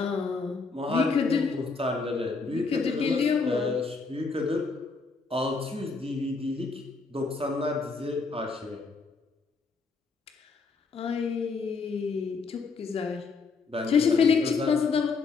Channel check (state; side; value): quieter; right; 4.5 dB